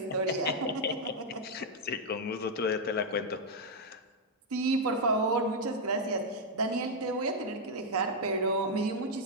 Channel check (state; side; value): normal; both; correlation -0.02